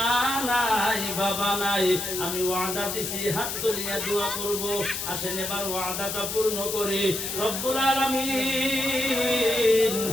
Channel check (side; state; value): left; noise; hiss, 4 dB below the sound